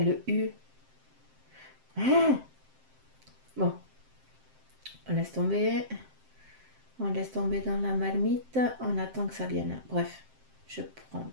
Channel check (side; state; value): left; late; 7.6 ms